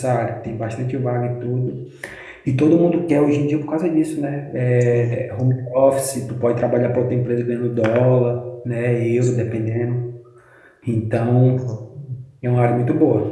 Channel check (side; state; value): both; identical; correlation 1.00